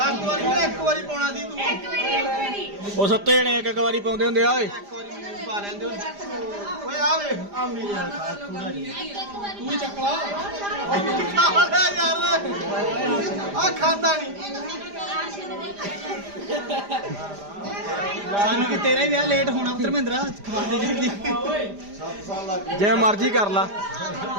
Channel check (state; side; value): late; left; 5.0 ms